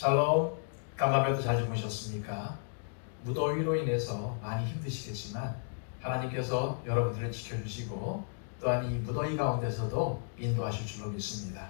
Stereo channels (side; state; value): right; silent; digital silence